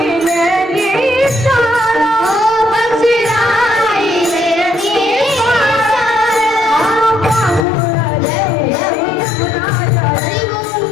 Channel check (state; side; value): drops out; right; at 7.7 s